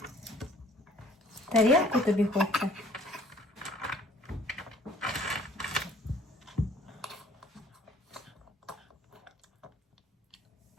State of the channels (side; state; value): both; normal; correlation 0.55